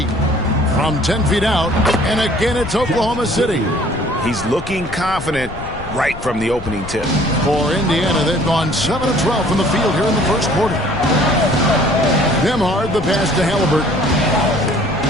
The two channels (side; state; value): left; noise; rumble, 12 dB below the sound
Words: From 10 feet out. And again it's Oklahoma City. He's looking confident right from the opening tip. For Indiana, they've gone 7 of 12 from the field here in the first quarter. Nembhard, the pass to Halliburton.